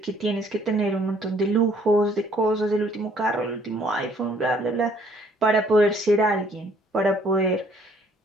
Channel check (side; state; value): both; normal; correlation 0.62